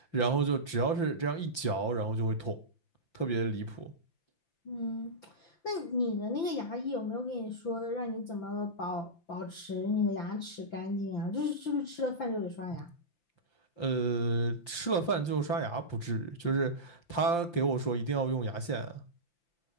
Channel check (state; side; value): late; right; 5.8 ms